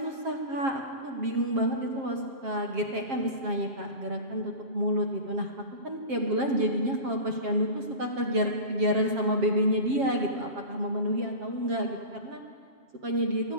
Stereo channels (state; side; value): late; left; 7.4 ms